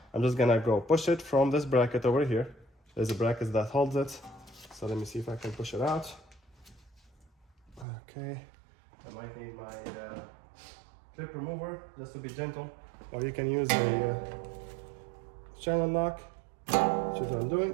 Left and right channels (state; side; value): drops out; left; at 7.9 s